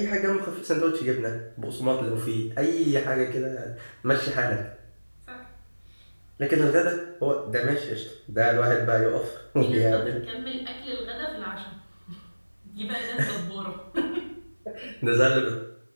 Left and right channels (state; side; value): inverted; both; correlation -1.00